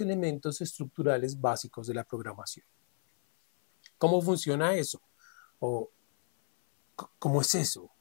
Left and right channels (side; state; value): right; silent; 57 dB below the other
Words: elementos estructurales básicos de la programación. ¿Cómo funciona eso? ¿O cómo es eso?